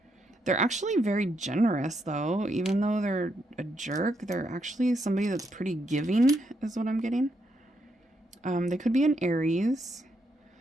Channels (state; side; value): normal; both; correlation 0.78